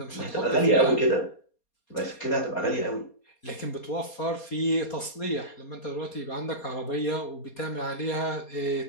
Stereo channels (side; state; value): right; late; 4.3 ms